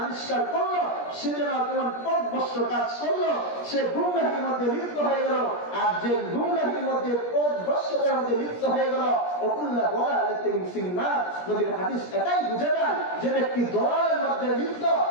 আবিষ্কার করলো সে যেন কেমন পথভ্রষ্ট কাজ করলো, সে গুমরাহির মধ্যে লিপ্ত হয়ে গেল। আর যে গুমরাহির মধ্যে পথভ্রষ্টতার মধ্যে লিপ্ত হয়ে গেল, ওকুল্লা দালালাতিন ফিন্নার, নবীর হাদিস এটাই বুঝে যায় যে ব্যক্তি দলালের মধ্যে লিপ্ত,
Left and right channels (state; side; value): late; right; 17 ms